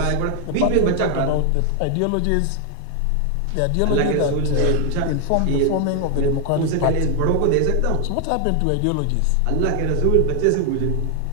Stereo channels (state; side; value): different; both; correlation 0.00